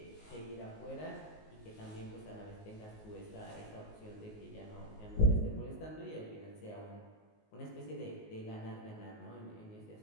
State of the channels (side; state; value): right; late; 19 ms